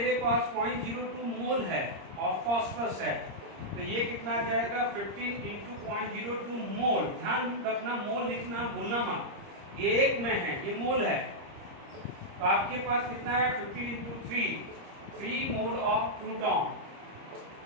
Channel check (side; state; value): left; late; 30 ms